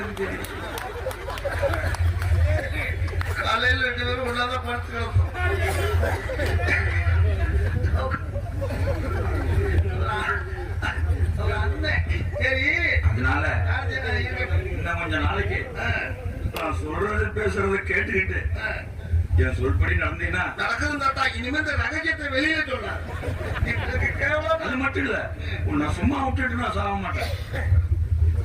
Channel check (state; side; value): identical; both; correlation 1.00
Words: தெரியும். காலையில் 2 பேரும் ஒன்னாதான் படுத்து கிடப்போம். சரி, அதனால இன்னும் கொஞ்ச நாளைக்கு நான் சொல்றது பேசுறத கேட்டுக்கிட்டு என் சொல்படி நடந்தீங்கன்னா நடக்குது தாத்தா. இனிமே இந்த ரகசியத்தை வெளியில சொன்ன அது மட்டும் இல்ல, உன்னை சும்மா விட்டுட்டு நான் சாக மாட்டேன்.